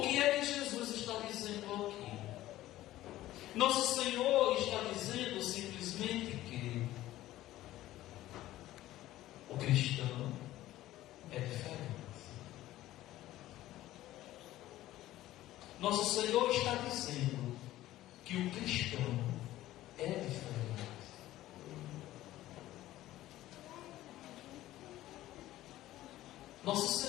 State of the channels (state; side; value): quieter; right; 15.1 dB